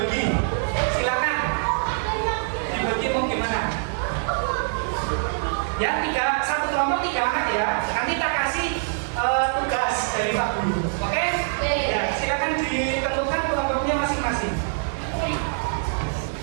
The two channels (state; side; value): silent; left; digital silence